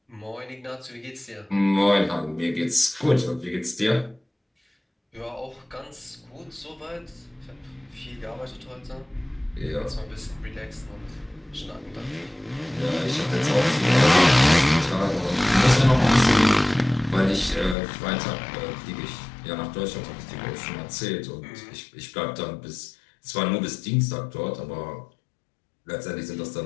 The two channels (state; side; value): drops out; right; at 17.8 s